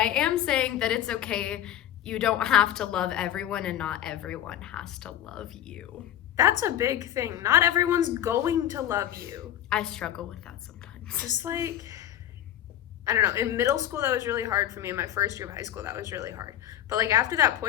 am saying that it's okay. You don't have to love everyone, and not everyone has to love you. That's a big thing. Not everyone's going to love you. I struggle with that sometimes. Just like, I don't know, in middle school that was really hard for me. In my first year of high school that was really hard. But like after that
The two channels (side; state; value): right; quieter; 11.6 dB